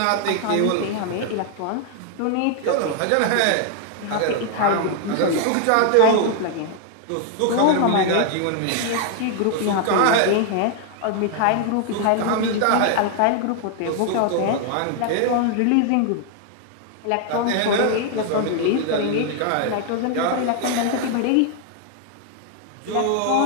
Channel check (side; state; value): both; different; correlation 0.00